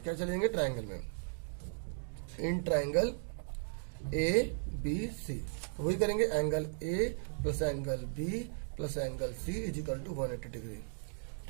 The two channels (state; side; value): silent; left; digital silence